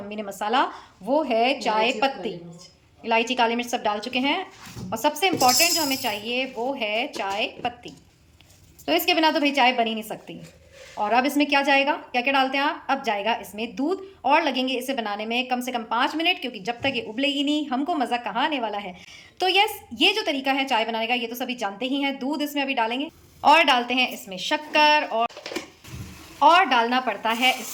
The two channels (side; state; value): both; identical; correlation 1.00